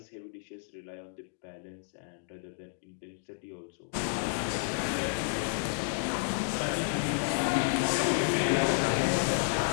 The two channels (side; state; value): right; silent; digital silence